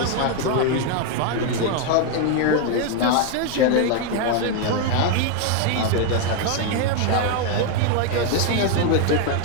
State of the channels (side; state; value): both; different; correlation 0.01